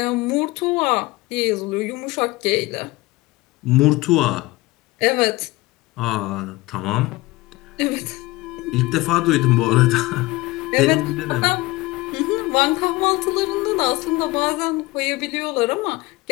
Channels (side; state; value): right; quieter; 20.8 dB